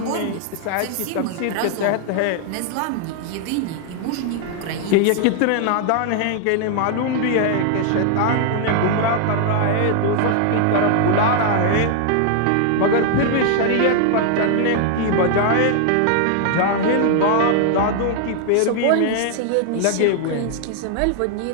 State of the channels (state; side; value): different; both; correlation 0.00